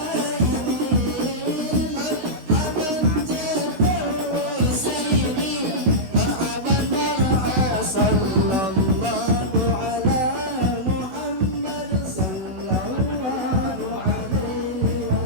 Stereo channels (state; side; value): late; left; 16 ms